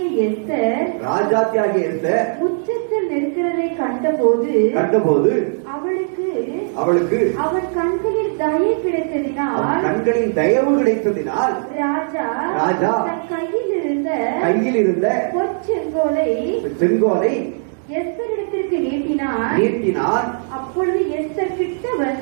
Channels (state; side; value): silent; left; digital silence